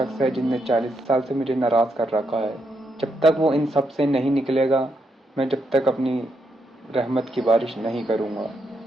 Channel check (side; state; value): both; normal; correlation 0.80